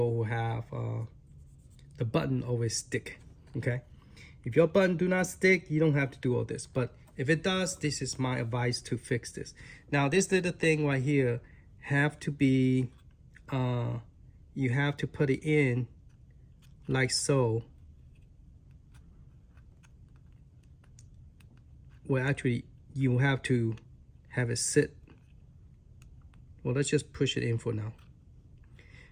who have the button always stick, okay? If your button do not stick, you don't have to do all this. But if it does, this is my advice to fix this. Now, this little thing right here have to be, you have to put it in like so. Well, actually, you have to have it sit. Well, let's just push it in for now.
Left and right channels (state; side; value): identical; both; correlation 1.00